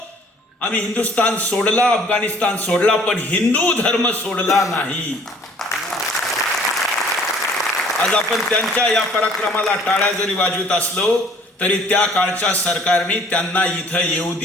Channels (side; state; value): both; normal; correlation 0.55